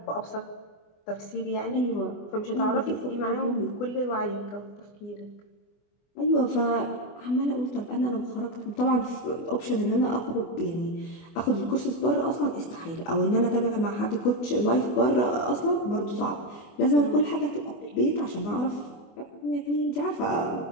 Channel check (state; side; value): late; right; 24 ms